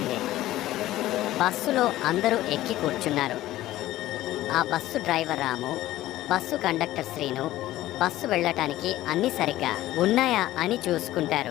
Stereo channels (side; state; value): right; quieter; 15.2 dB